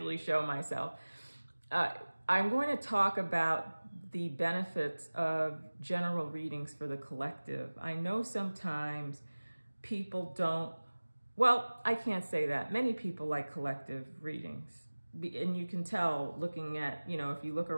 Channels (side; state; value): both; inverted; correlation -1.00